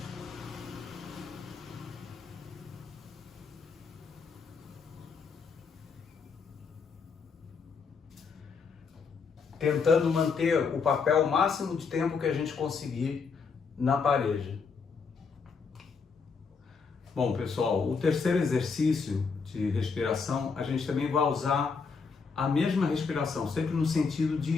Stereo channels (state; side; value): quieter; right; 5.2 dB